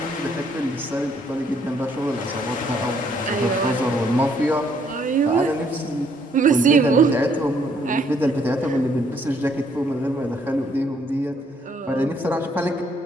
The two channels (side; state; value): both; normal; correlation 0.68